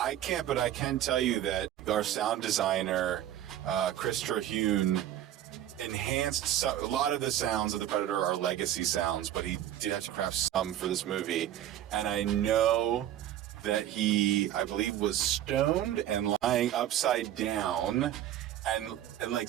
can't, but I can tell you that our sound designer, Chris Terhune, enhanced a lot of the sounds of the Predator are legacy sounds, but he did have to craft some for this movie. And I know that he, I believe, was stoned and lying upside down. And like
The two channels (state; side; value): quieter; left; 12.0 dB